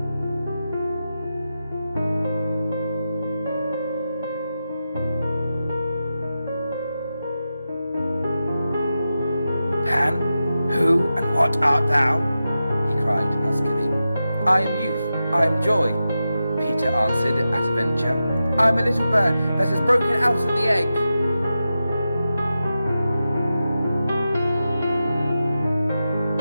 Pan, who and what art thou? He cried huskily. I am youth, I am joy, Peter answered at a venture. I am a little bird that has broken out of the egg.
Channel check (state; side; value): inverted; both; correlation -0.91